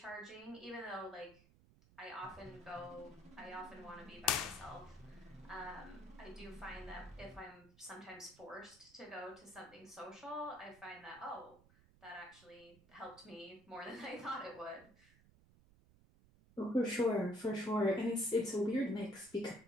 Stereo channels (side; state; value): right; noise; rumble, 25 dB below the sound